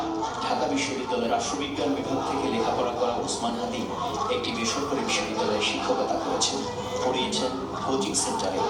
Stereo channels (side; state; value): both; identical; correlation 1.00